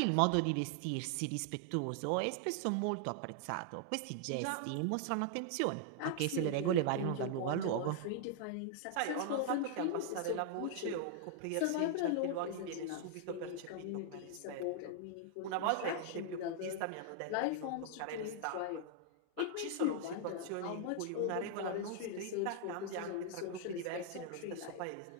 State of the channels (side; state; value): both; different; correlation -0.01